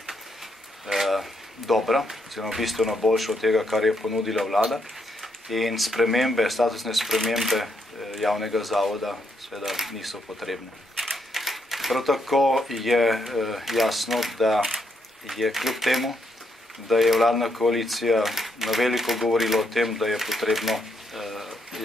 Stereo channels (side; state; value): both; normal; correlation 0.77